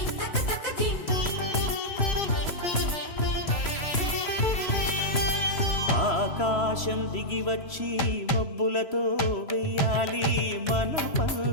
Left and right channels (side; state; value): right; late; 3.0 ms